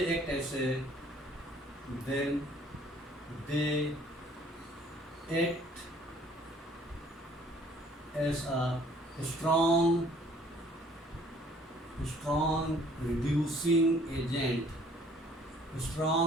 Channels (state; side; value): normal; both; correlation 0.58